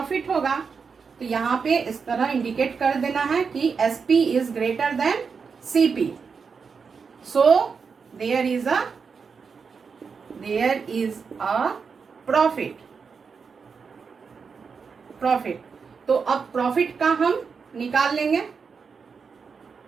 होगा। तो यहाँ पे इस तरह इंडिकेट कर देना है कि SP is greater than CP, so there is a profit. तो अब प्रॉफिट का हम निकाल लेंगे।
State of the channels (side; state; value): left; quieter; 5.6 dB